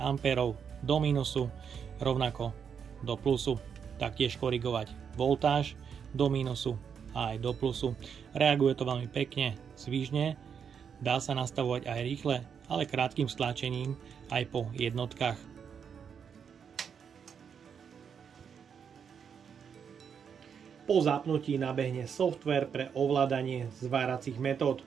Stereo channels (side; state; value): left; quieter; 7.1 dB